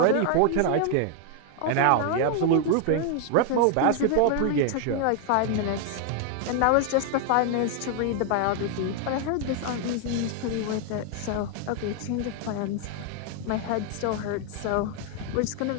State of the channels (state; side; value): different; both; correlation 0.00